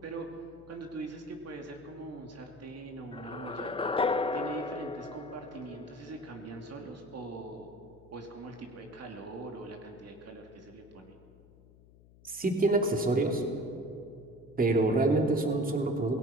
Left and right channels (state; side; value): noise; left; hum, 23 dB below the sound